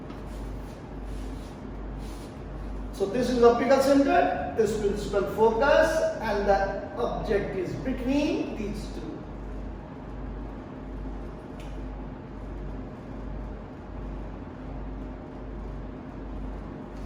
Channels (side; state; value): both; identical; correlation 1.00